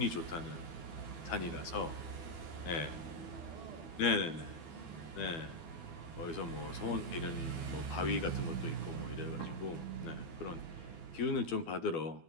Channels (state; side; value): late; right; 12 ms